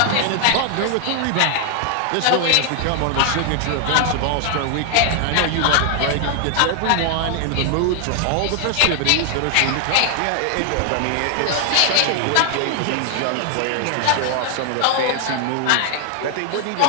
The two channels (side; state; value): both; different; correlation 0.00